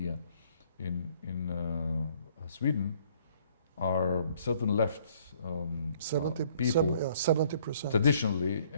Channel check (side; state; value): both; inverted; correlation -0.61